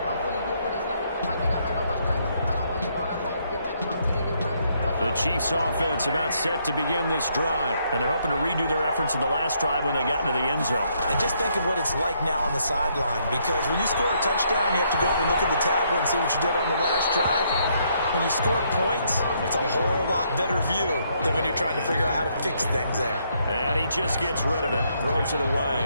The Chiefs offense about set to begin this drive, and they're hoping to redo their efforts in the last drive when they got into the end zone. And just think of what it's like now on the sideline, because when you score a touchdown, you have to go over and look at the tablet and see what you did on the last drive. When you score points, it's a whole lot better view than when you're trying to figure out how to fix things there. And he just gets rid of it, throws it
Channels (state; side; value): inverted; both; correlation -0.72